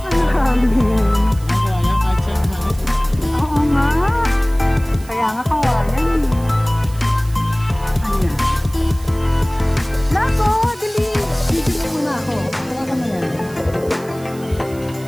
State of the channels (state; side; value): noise; right; hiss, 21 dB below the sound